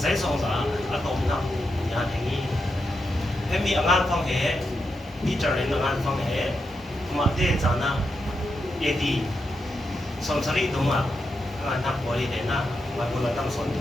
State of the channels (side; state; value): both; normal; correlation 0.85